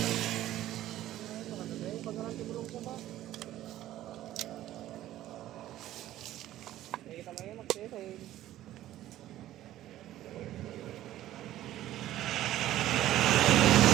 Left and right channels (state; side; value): quieter; left; 13.9 dB